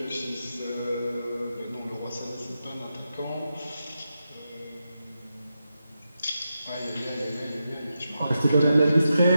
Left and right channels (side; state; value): both; inverted; correlation -0.89